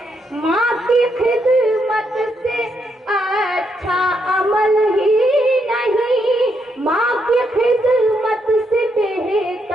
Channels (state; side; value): normal; both; correlation 0.77